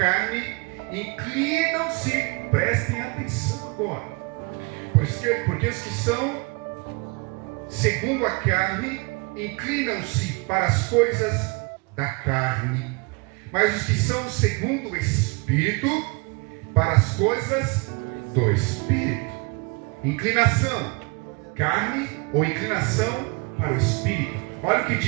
inclinam-se, prestem atenção agora. Porque os que são segundo a carne, inclinam-se para as coisas da carne. Mas os que são segundo o Espírito, para as coisas do Espírito. Inclinação, carne ou inclinação para o Espírito. Olha o que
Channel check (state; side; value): quieter; left; 29.7 dB